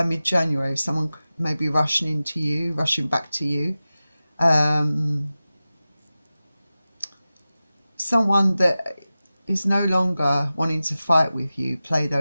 mid-January, someone may be rushing into you, rushing back to you. Someone that is no longer wanting to fight with you, play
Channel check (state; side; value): inverted; both; correlation -0.95